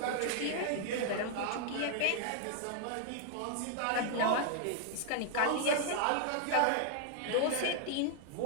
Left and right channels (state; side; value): different; both; correlation 0.00